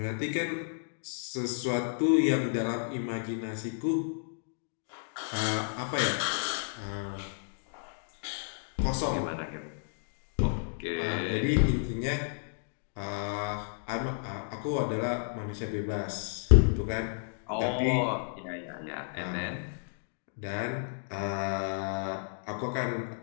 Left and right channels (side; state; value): right; silent; digital silence